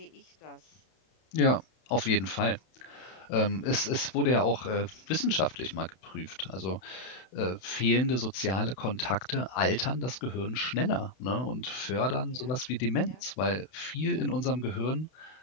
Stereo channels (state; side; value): late; right; 32 ms